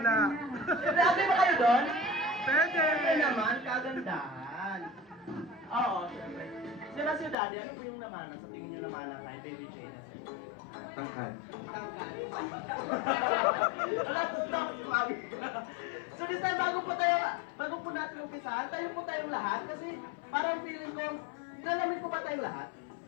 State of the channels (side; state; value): right; drops out; at 7.4 s